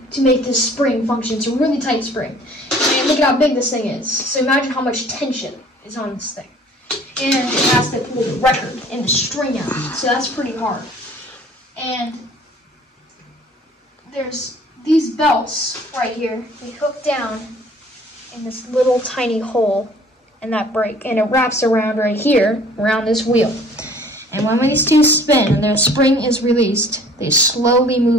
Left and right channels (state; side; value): normal; both; correlation 0.53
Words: to make this spring function. It's a really tight spring. And look at how big this thing is. So imagine how much tension is on this thing. and it has to pull the record and the string out. So that's pretty hard. And there's these belts right here. They hook down in this little tiny hole in that brake, and it wraps around right here, around this wheel. And when these two spin and the spring is released, they slowly